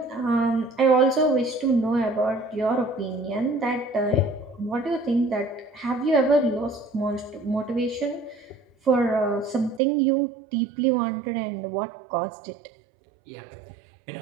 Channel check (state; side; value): drops out; left; at 9.8 s